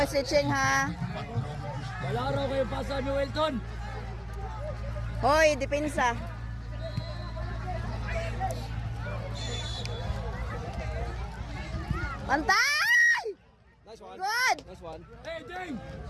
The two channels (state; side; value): identical; both; correlation 1.00